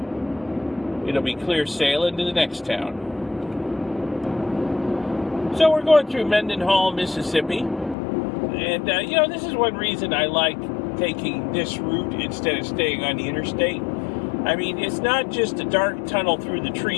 it'll be clear sailing to the next town. So we're going through Mendenhall, Mississippi. And, you know, this is one reason I like taking this route instead of staying on the interstate. I mean, it's not just a dark tunnel through the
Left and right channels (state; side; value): drops out; right; at 8.0 s